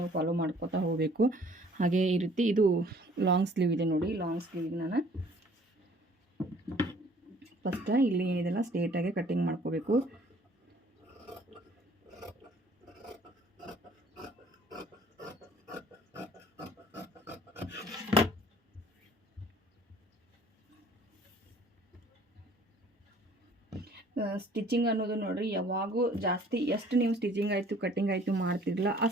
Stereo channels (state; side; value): normal; both; correlation 0.55